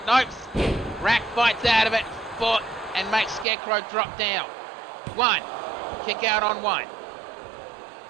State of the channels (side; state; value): left; drops out; at 3.5 s